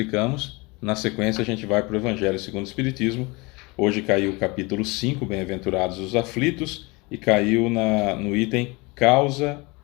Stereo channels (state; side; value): quieter; right; 26.0 dB